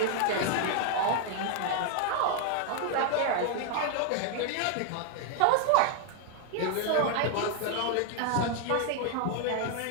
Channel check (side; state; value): both; different; correlation 0.00